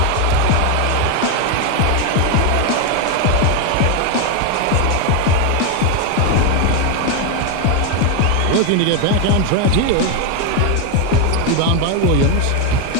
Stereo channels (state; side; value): different; both; correlation 0.02